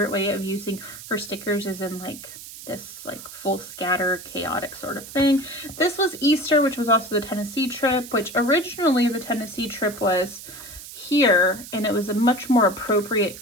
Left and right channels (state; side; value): noise; right; hiss, 14 dB below the sound